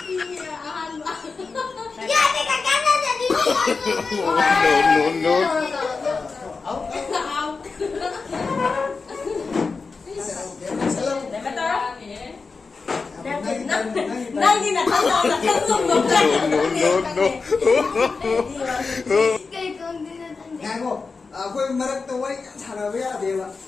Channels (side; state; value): right; quieter; 4.5 dB